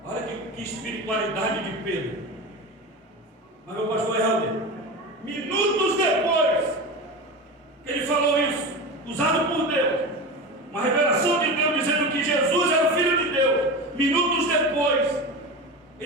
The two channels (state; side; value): normal; both; correlation 0.25